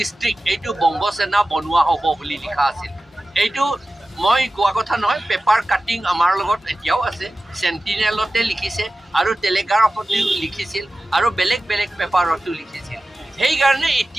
এইটো বংগ সেনা বনোৱা হ'ব বুলি লিখা আছিল এইটো মই কোৱা কথা নহয় পেপাৰ কাটিং আমাৰ লগত এতিয়াও আছে চেণ্টিনেলতে লিখিছে আৰু টেলিগ্ৰাফতো লিখিছিল আৰু বেলেগ বেলেগ পেপাৰতো লিখিছিল সেইকাৰণে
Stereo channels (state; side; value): normal; both; correlation 0.95